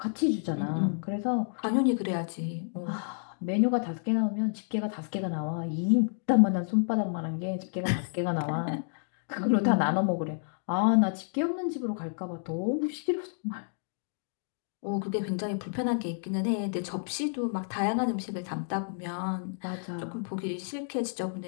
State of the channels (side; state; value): right; silent; digital silence